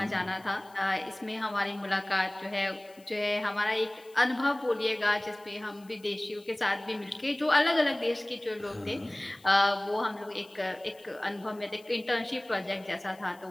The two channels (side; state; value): left; noise; hiss, 27 dB below the sound